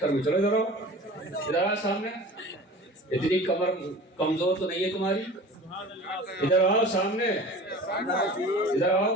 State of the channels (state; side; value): normal; both; correlation 0.39